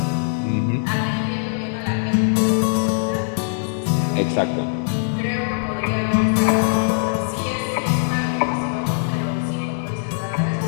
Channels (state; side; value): silent; right; 65 dB below the other